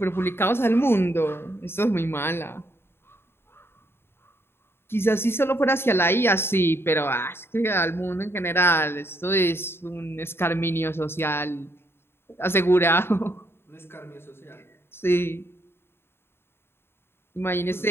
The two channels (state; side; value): late; right; 0.11 ms